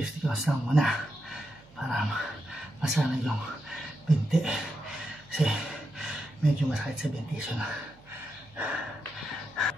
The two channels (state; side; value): noise; right; hum, 26 dB below the sound